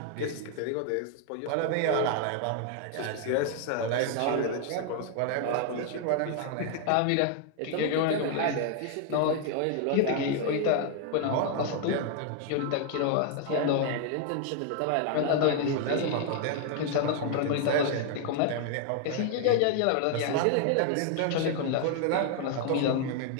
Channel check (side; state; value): both; different; correlation 0.00